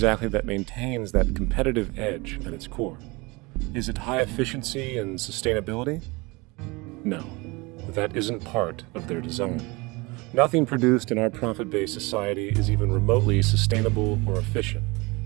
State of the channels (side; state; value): left; quieter; 25.1 dB